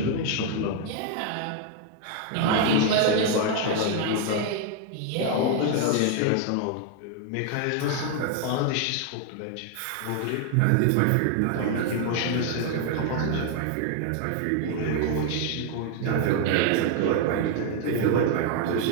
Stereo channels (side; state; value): both; different; correlation 0.00